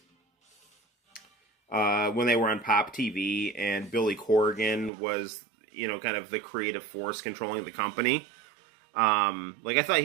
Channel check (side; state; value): left; drops out; at 4.9 s